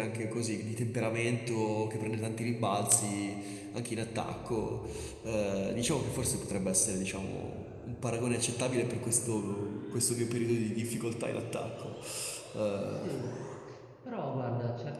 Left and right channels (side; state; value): both; identical; correlation 1.00